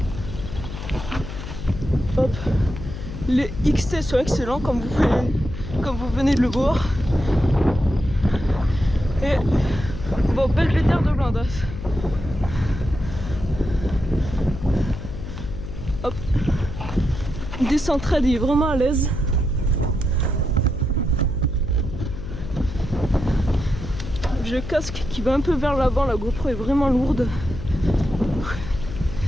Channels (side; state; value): left; noise; hum, 9 dB below the sound